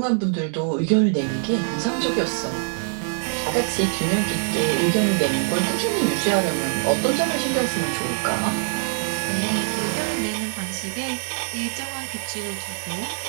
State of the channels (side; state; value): left; silent; digital silence